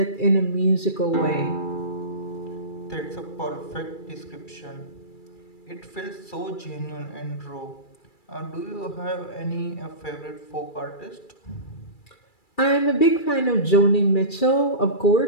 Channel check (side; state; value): right; late; 2.3 ms